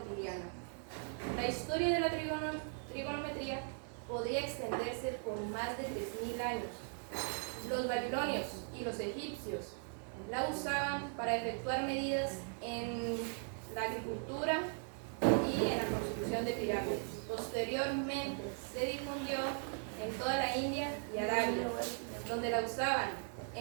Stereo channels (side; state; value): left; silent; 52 dB below the other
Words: La historia de la trigonometría podría extenderse por más de 3000 años. Los babilonios y los egipcios la usaban para efectuar medidas en la agricultura y en la construcción de pirámides. Posteriormente se difundió en toda la India y Arabia, donde la usaban